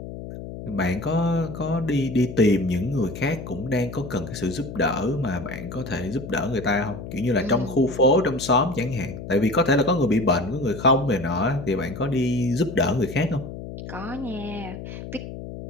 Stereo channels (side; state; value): left; noise; hum, 10 dB below the sound